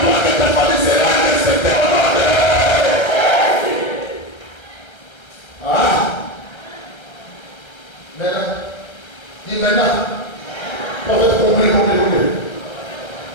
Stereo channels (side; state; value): right; late; 1.3 ms